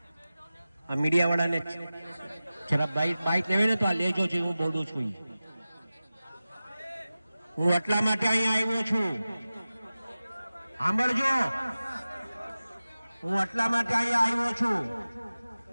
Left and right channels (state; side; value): inverted; both; correlation -0.96